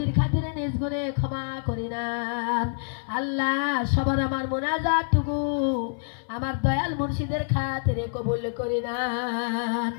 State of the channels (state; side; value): silent; right; 56 dB below the other